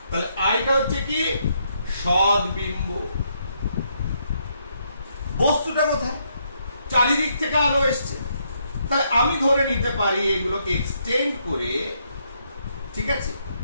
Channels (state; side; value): inverted; both; correlation -0.75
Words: তাহলে আইটা হচ্ছে কি? সদ্বিম্ব। বস্তুটা কোথায়? চারিদিক থেকে আলো এসছে। তাহলে আমি ধরে নিতে পারি এগুলোকে এক্সটেন্ড করে, ঠিক আছে,